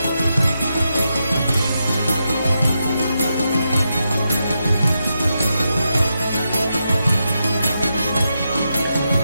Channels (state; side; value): inverted; both; correlation -0.85